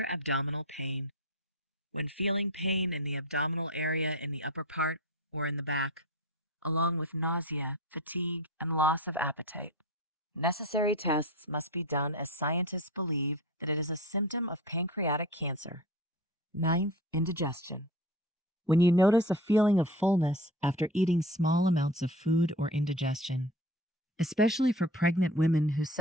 abdominal pain. When feeling pain in the abdominal area in the upper part or in the back, along with nausea, fatigue, and loss of appetite, necessary tests must be done as scientists believe that it is a symptom of pancreatic cancer. Ninth, indigestion. When you notice a feeling of fullness after eating small amounts of food or indigestion, especially for pregnant women who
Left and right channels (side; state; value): both; normal; correlation 0.33